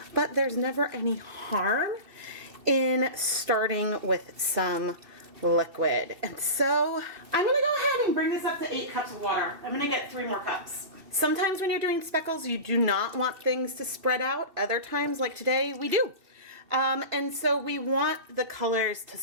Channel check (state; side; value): late; left; 2.7 ms